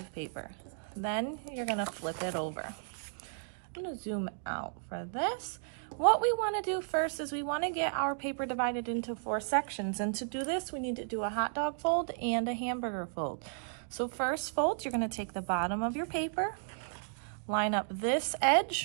paper. Then you're going to flip it over. I'm going to zoom out for this. What we want to do first is we want to get our paper divided into 4 sections, and to do this we need to do a hot dog fold and a hamburger fold. So first fold, you're going to take the bottom of your paper, line up this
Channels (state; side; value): silent; left; digital silence